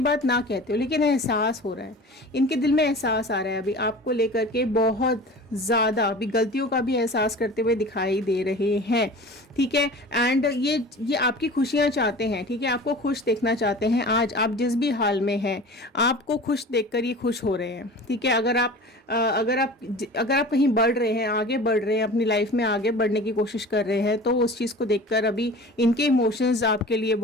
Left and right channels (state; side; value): normal; both; correlation 0.39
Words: ना कहते हो, लेकिन एहसास हो रहा है, इनके दिल में एहसास आ रहा है अभी आपको लेकर के, बहुत ज़्यादा अभी गलतियों का भी एहसास करते हुए दिखाई दे रहे हैं, ठीक है। एंड ये आपकी खुशियाँ चाहते हैं, ठीक है, आपको खुश देखना चाहते हैं। आज आप जिस भी हाल में हैं, आपको खुश देखकर ये खुश हो रहे हैं, ठीक है। अगर आप कहीं बढ़ रहे हैं, आगे बढ़ रहे हैं, अपनी लाइफ में आगे बढ़ने की कोशिश कर रहे हैं, तो उस चीज़ को देखकर अभी इनके इमोशंस आपके लिए